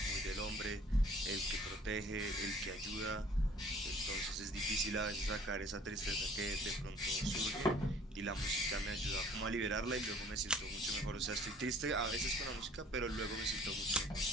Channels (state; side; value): normal; both; correlation 0.53